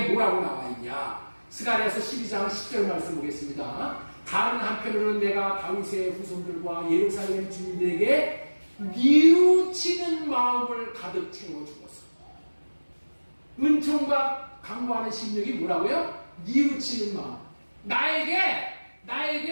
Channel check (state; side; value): inverted; both; correlation -1.00